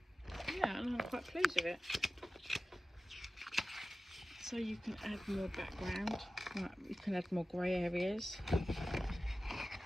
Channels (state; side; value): normal; both; correlation 0.95